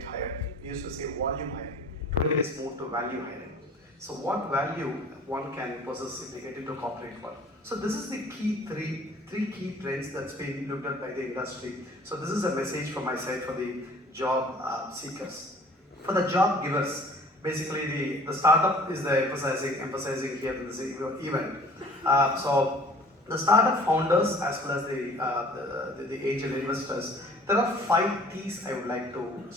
hired. We used to say volume hiring. Today it's moved to value hiring. So what value one can possess if they get into corporate world? So this is the key three key trends that's been looked at by the industry. So this is a message from my side for the job seekers. For the job givers, basically the startup is the emphasizing here in this event. So the startup founders as well as the angel investors, there are 5 T's I would like to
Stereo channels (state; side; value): normal; both; correlation 0.49